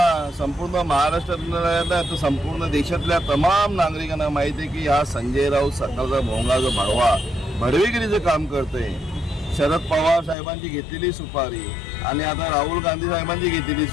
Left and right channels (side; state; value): right; drops out; at 10.4 s